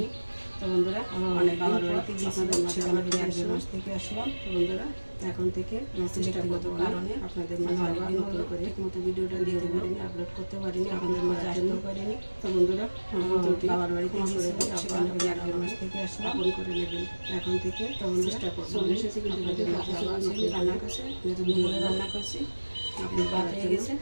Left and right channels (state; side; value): inverted; both; correlation -1.00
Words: তো বন্ধুরা, অনেক বাবার বাড়িতে আপনাদের মাঝে আবার ফিরে আসলাম, মাস থেকে আসলাম। তো বন্ধুরা, এখন থেকে ব্যক্তিগত কারণে আপনাদের মাঝে অনেকদিন নতুন করে ঠিকমতো ভিডিওটা দিতে পারিনি, আপলোড করতে পারিনি, আপনাদের মাঝে আসতেও পারিনি। তো বন্ধুরা, বাবার বাড়িতে আপনাদের 1 মাস থেকে আসলাম, ফোন করে নেবেন এখন থেকে। তো চেষ্টা করবো চলে এসেছি, কিন্তু রান্না করছে, যেহেতু দুপুরে রান্না করছি, আপনি ভাত হয়ে গেছে।